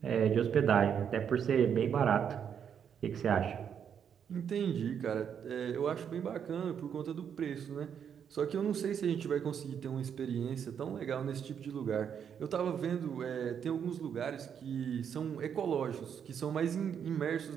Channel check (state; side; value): quieter; left; 8.0 dB